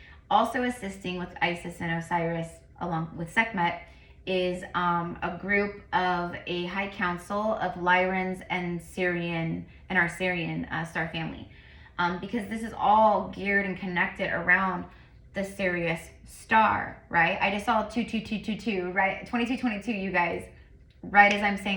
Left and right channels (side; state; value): both; identical; correlation 1.00